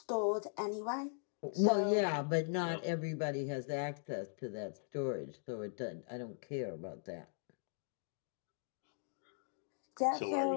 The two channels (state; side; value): silent; right; digital silence